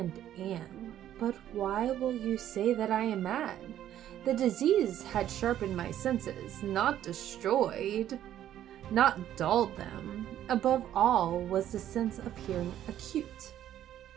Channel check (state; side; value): quieter; left; 11.5 dB